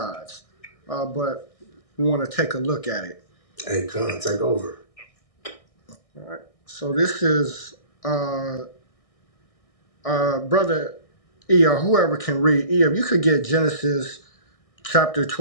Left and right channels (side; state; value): right; late; 1.6 ms